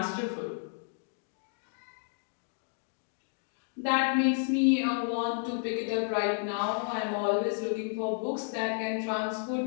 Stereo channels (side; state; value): right; silent; digital silence